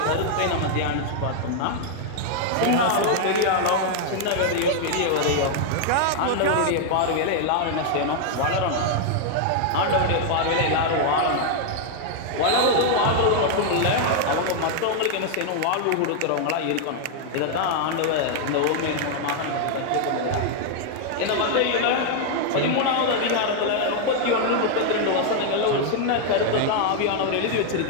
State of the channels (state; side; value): different; both; correlation 0.00